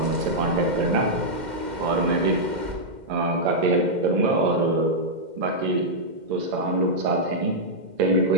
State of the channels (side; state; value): left; late; 2.1 ms